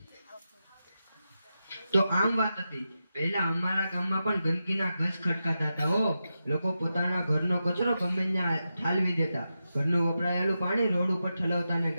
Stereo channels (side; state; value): both; inverted; correlation -0.89